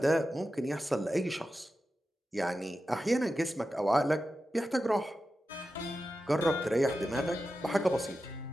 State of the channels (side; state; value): both; normal; correlation 0.91